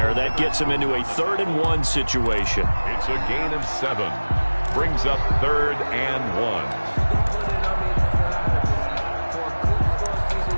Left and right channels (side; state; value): both; inverted; correlation -1.00